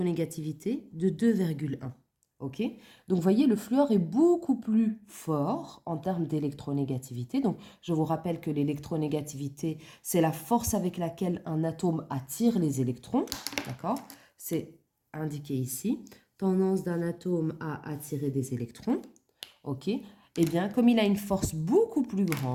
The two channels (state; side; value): identical; both; correlation 1.00